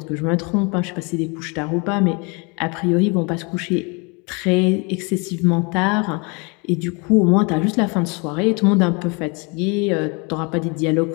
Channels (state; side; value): quieter; right; 31.1 dB